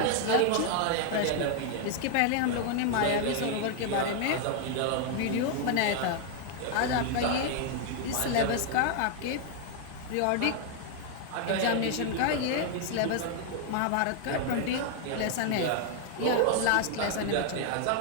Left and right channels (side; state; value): both; different; correlation 0.00